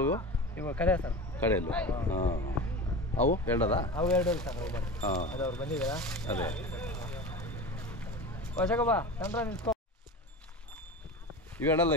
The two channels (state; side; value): normal; both; correlation 0.30